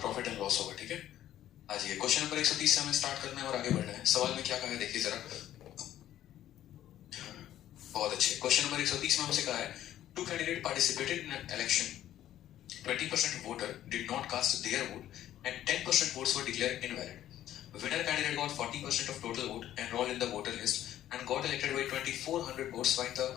प्रॉफिट एंड लॉस होगा. ठीक है, आज ये क्वेश्चन नंबर 130 से हमें स्टार्ट करना है और आगे बढ़ना है. सवाल में क्या कहा है देखिए जरा. बहुत अच्छे. क्वेश्चन नंबर 130 में हमसे कहा है, two candidate participated in an election. 20% voter did not cast their vote and 10% votes were declared invalid. Winner candidate got 40% of total vote enrolled in the voter list and got elected by 2400 votes. Find the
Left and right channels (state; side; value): quieter; right; 12.4 dB